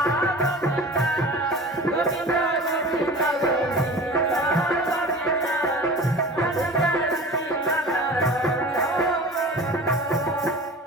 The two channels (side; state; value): both; normal; correlation 0.37